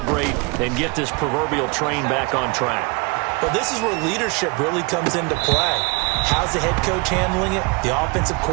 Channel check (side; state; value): left; quieter; 30.1 dB